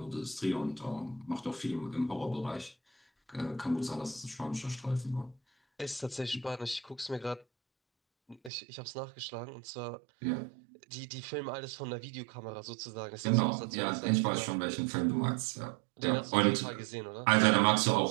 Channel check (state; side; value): drops out; left; at 8.5 s